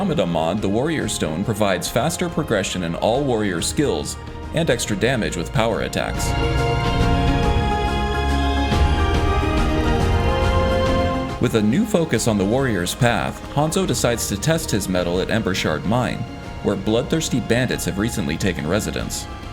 mod, the Warrior Stone provides faster progression in all warrior skills and extra damage with power attacks. With a new focus on the warrior's path, Hanzo decides to test his mettle at Embershard Mine, where bloodthirsty bandits have recently taken residence.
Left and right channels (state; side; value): identical; both; correlation 1.00